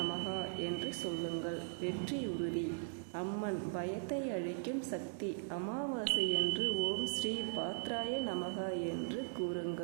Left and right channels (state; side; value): silent; left; digital silence